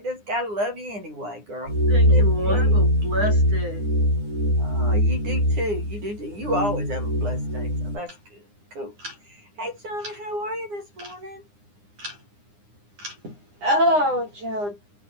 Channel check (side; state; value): left; late; 9.8 ms